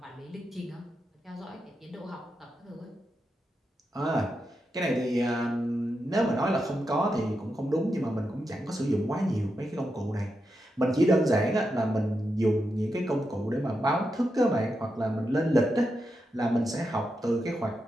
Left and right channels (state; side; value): normal; both; correlation 0.86